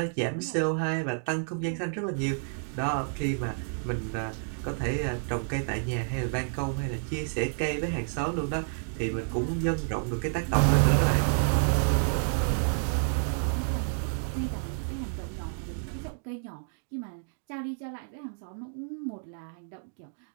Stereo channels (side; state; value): left; silent; digital silence